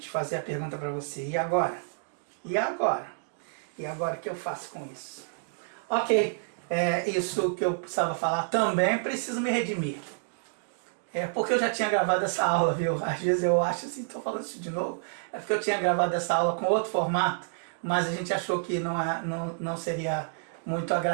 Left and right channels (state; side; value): silent; left; digital silence